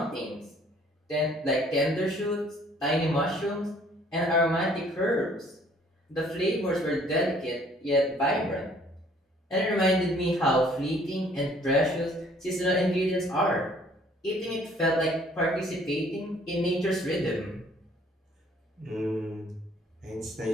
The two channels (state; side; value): normal; both; correlation 0.59